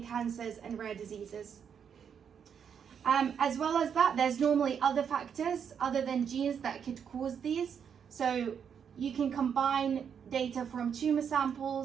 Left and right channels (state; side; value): quieter; left; 7.5 dB